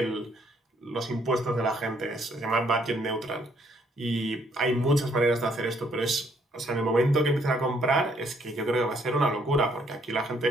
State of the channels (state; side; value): normal; both; correlation 0.68